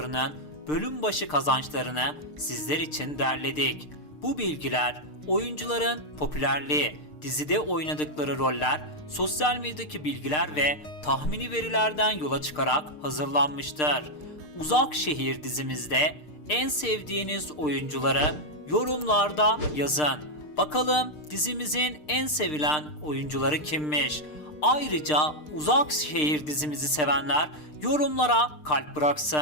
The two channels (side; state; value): right; late; 6.6 ms